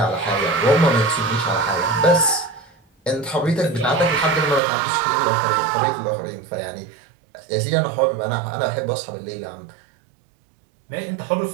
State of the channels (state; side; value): drops out; left; at 4.6 s